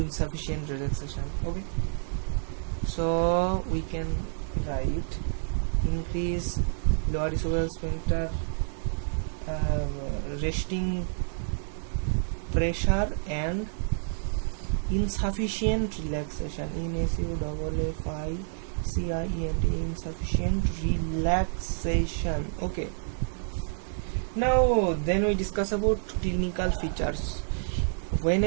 relaxation. Okay, so we can write increase lower esophageal sphincter resting pressure and insufficient relaxation. INSUFFICIENT, insufficient relaxation. Okay, now then we discuss about clinical features. When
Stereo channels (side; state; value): left; silent; 59 dB below the other